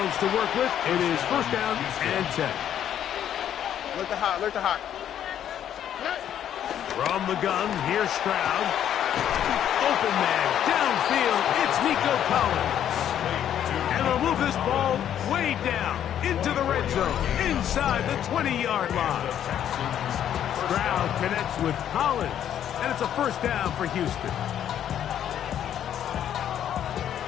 to work with. It is first down and 10. Alert the hot, alert the hot. From the gun, here's Stroud. Open man, downfield, it's Nico Collins. And they'll move this ball way down into the red zone, inside the 20-yard line. Stroud connects with Collins, and it's a first down for Houston.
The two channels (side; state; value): right; quieter; 10.2 dB